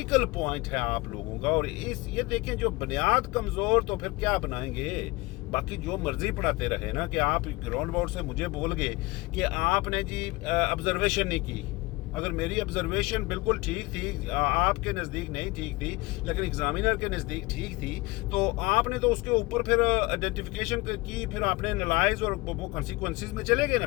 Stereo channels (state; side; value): quieter; right; 23.0 dB